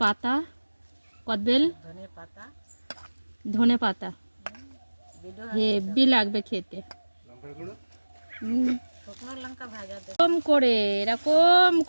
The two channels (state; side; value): inverted; both; correlation -1.00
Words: পাতা, কদবেল, ধনে পাতা। হেভি লাগবে খেতে। এরকম